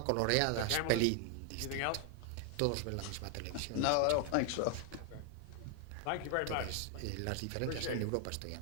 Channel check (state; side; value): different; both; correlation 0.00